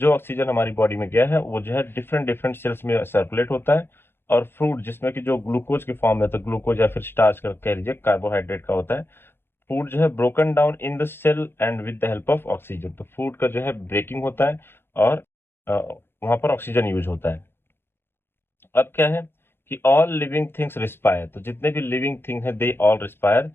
ऑक्सीजन हमारी बॉडी में गया है वो जो है डिफरेंट डिफरेंट सेल्स में सर्कुलेट होता है। और फ्रूट जिसमें कि जो ग्लूकोज के फॉर्म में, तो ग्लूकोज या फिर स्टार्च का कह लीजिए, कार्बोहाइड्रेट का होता है। फूड जो है broken down in the cell and with the help of oxygen. तो फूड का जो है ब्रेकिंग होता है और वहां पर ऑक्सीजन यूज होता है। अब क्या है कि ऑल लिविंग थिंग्स रिस्पायर। तो जितने भी लिविंग थिंग है दे ऑल रिस्पायर।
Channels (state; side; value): late; right; 0.11 ms